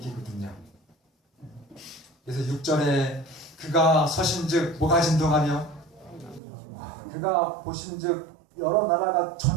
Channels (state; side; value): drops out; left; at 6.4 s